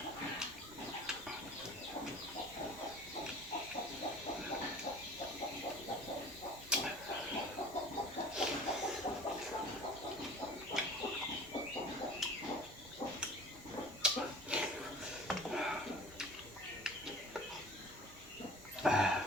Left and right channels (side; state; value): both; normal; correlation 0.44